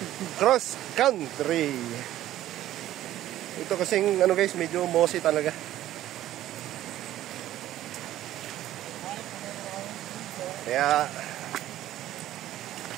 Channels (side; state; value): left; quieter; 13.5 dB